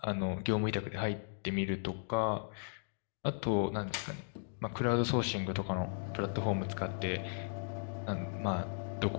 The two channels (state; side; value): silent; right; digital silence